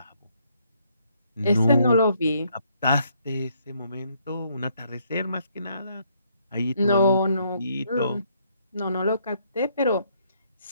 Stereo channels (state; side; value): inverted; both; correlation -0.70